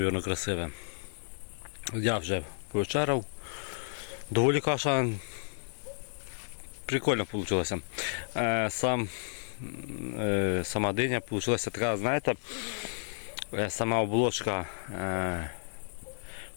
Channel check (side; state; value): right; silent; digital silence